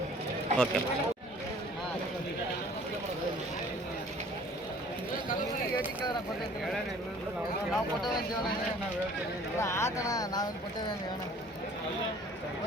ಓಕೆ. ನಾವು ಕೊಟ್ಟೇವೆ ಆತಣ. ನಾವೇನು ಕೊಟ್ಟೇವೆ ಹೇಳೋಣ.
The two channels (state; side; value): normal; both; correlation 0.51